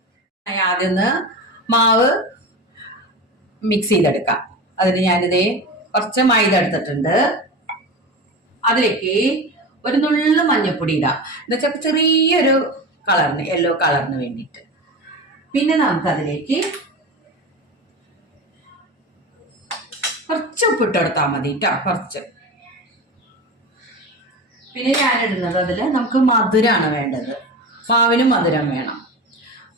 ആദ്യം മാവ് മിക്സ് ചെയ്തെടുക്കാം. അതിന് ഞാനിതേ കുറച്ച് മൈദ എടുത്തിട്ടുണ്ട്. അതിലേക്ക് ഒരു നുള്ളു മഞ്ഞപ്പൊടി ഇടാം, എന്നുവെച്ചാൽ ചെറിയൊരു കളറിന്, യെല്ലോ കളറിന് വേണ്ടിയിട്ട്. പിന്നെ നമുക്ക് അതിലേക്ക് കുറച്ച് ഉപ്പിട്ട് കൊടുത്താൽ മതി കേട്ടോ, കുറച്ച്. പിന്നെ ഞാനിടുന്നത് അതിൽ നമുക്ക് മധുരമാണ് വേണ്ടത്. മാവിനും മധുരം വേണം.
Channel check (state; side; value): normal; both; correlation 0.28